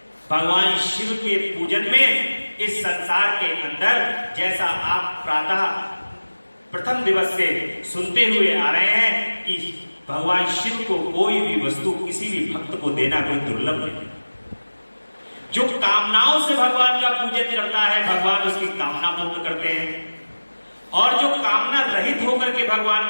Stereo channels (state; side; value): inverted; both; correlation -1.00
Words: भगवान शिव के पूजन में इस संसार के अंदर, जैसा आप प्रातः प्रथम दिवस से सुनते हुए आ रहे हैं कि भगवान शिव को कोई भी वस्तु किसी भी भक्त को देना कोई दुर्लभ नहीं। जो कामनाओं से भगवान का पूजन करता है, भगवान उसकी कामना पूर्ण करते हैं, और जो कामना रहित होकर के भगवान